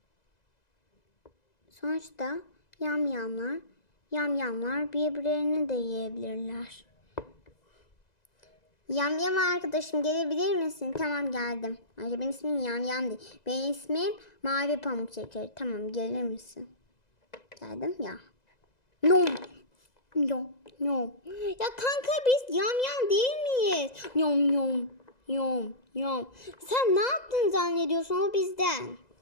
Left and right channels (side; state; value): right; late; 2.0 ms